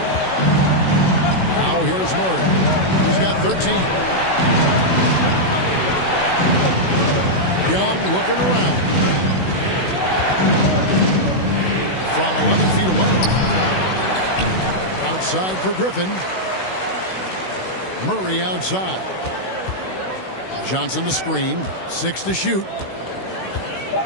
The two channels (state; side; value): late; right; 16 ms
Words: Now here's Murray. He's got 13. Young looking around. From 11 feet away. Outside for Griffin. Murray outside. Johnson the screen. 6 to shoot.